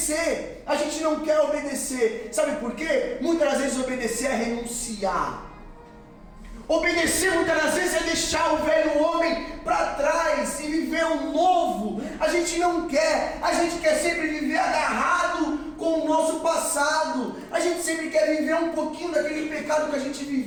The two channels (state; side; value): identical; both; correlation 1.00